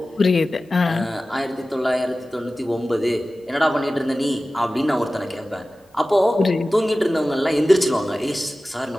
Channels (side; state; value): both; normal; correlation 0.96